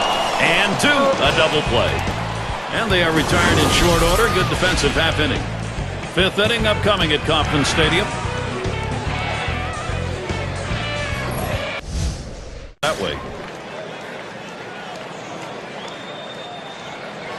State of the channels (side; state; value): both; identical; correlation 1.00